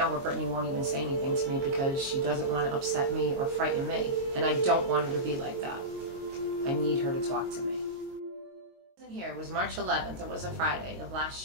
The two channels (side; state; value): left; late; 22 ms